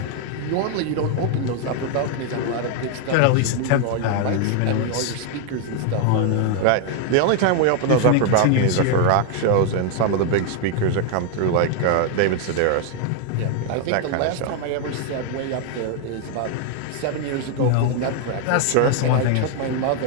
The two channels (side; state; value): both; different; correlation 0.00